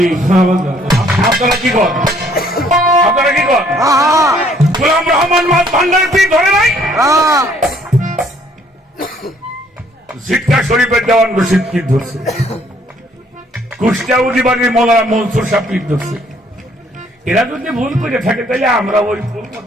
আপনারা কি কর? আপনারা কি কর? গোলাম রহমান মাছ ভান্ডার পীর ধরে নাই? সিটকা শরীফের দেওয়ান রশিদ পীর ধরছে। কুষ্টিয়া উজিবাড়ির মৌলানা মনসুর সাহেব পীর ধরছে। এরা যদি ভুল করে থাকে, তাহলে আমরা ওই ভুল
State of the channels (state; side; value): normal; both; correlation 0.63